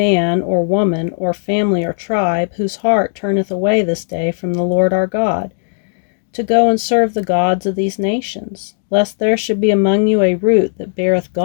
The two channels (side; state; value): right; silent; digital silence